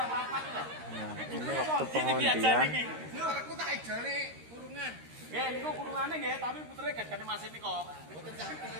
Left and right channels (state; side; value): late; left; 13 ms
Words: Nah, ini waktu pengundian. Aku tak ijone kurungan. Nggih, niku kurungane nggih, tapi putere gajane Mas niko. Mboten sampe